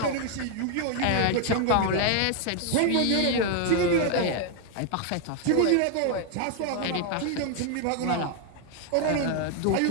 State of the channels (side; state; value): both; different; correlation 0.00